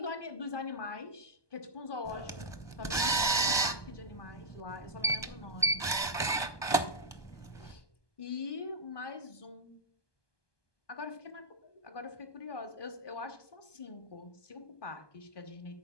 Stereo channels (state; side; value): late; right; 1.2 ms